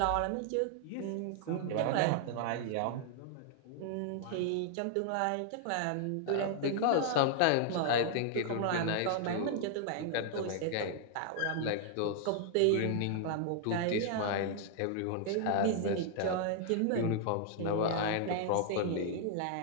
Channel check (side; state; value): both; different; correlation -0.01